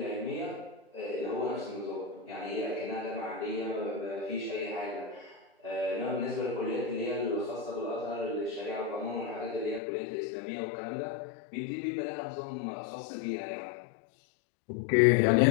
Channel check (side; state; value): right; drops out; at 9.8 s